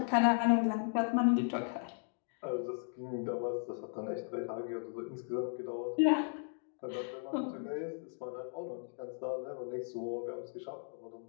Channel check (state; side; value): silent; right; digital silence